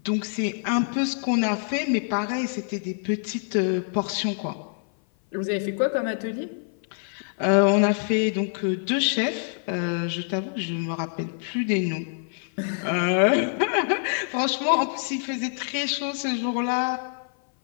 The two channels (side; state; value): right; silent; 56 dB below the other